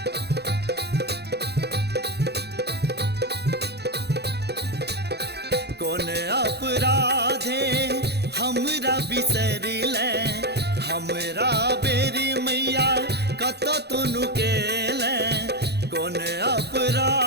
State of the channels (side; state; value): left; late; 0.48 ms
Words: कौन अपराधे हमरा बिसर ले, हमरा बेरी मैया कत तुनु केले, कौन